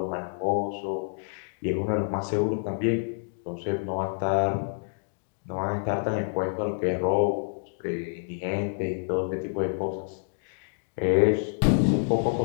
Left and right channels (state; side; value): silent; right; digital silence